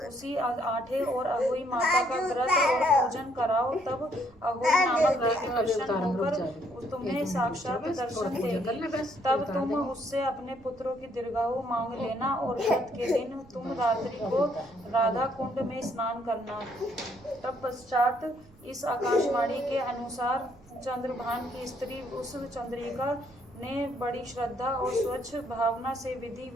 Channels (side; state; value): right; noise; rumble, 26 dB below the sound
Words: उसी आठे और अहोई माता का व्रत और पूजन कराओ, तब अहोई नामक देवी प्रसन्न होकर तुम्हें साक्षात दर्शन देगी। तब तुम उससे अपने पुत्रों की दीर्घायु मांग लेना और व्रत के दिन तुम रात्रि को राधा कुंड में स्नान करना। तब पश्चात इस आकाशवाणी के अनुसार चंद्रभान की स्त्री उस चंद्रिका ने बड़ी श्रद्धा और स्वच्छ भावना से विधि